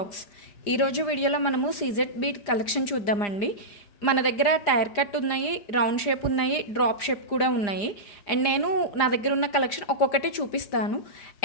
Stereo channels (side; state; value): right; late; 4.9 ms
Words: ఈరోజు వీడియోలో మనము సీజెడ్ బీట్ కలెక్షన్ చూద్దామండి. మన దగ్గర టైర్ కట్ ఉన్నాయి, రౌండ్ షేప్ ఉన్నాయి, డ్రాప్ షేప్ కూడా ఉన్నాయి. అండ్ నేను నా దగ్గర ఉన్న కలెక్షన్ ఒక్కొక్కటి చూపిస్తాను.